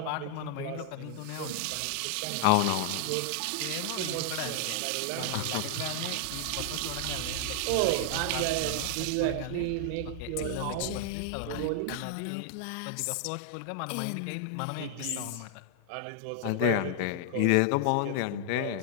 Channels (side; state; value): both; different; correlation 0.00